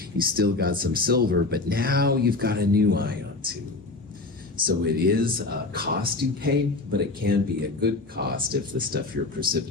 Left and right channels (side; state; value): right; quieter; 3.4 dB